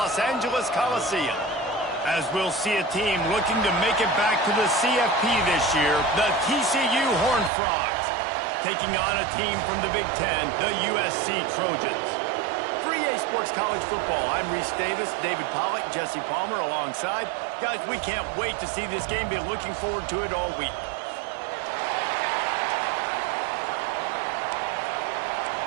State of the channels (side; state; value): left; drops out; at 7.5 s